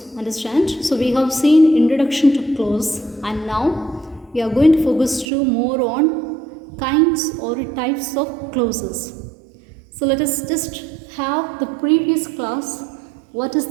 Understand? So we have seen introduction to clause, and now we are going to focus to more on kinds or types of clauses. So let us just have the previous class. What is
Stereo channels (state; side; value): drops out; left; at 5.2 s